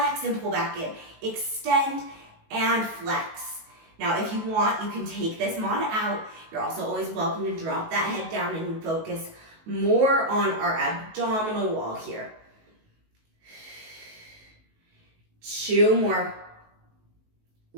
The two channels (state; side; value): late; left; 19 ms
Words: and pull back in. Extend and flex. Now, if you want, you can take this mod out. You're also always welcome to drop that head down and focus more on our abdominal wall here. 2 more.